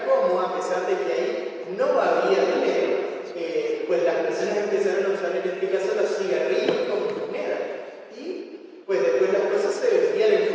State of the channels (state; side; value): identical; both; correlation 1.00